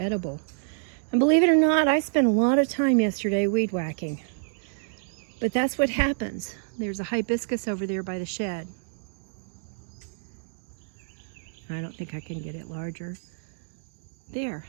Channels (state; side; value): silent; left; digital silence